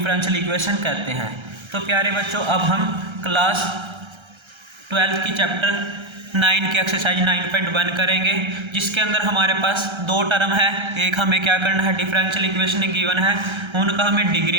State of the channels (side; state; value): left; late; 1.3 ms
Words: इक्वेशन कहते हैं। तो प्यारे बच्चों अब हम क्लास 12 की चैप्टर 9 की एक्सरसाइज 9.1 करेंगे, जिसके अंदर हमारे पास 2 टर्म है। एक हमें क्या करना है, डिफरेंशियल इक्वेशन गिवन है, उनका हमें